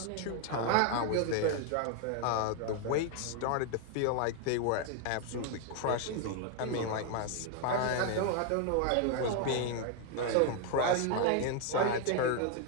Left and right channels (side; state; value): both; different; correlation 0.01